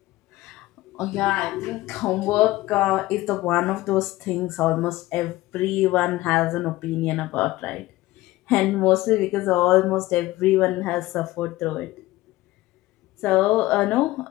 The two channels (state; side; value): quieter; right; 17.9 dB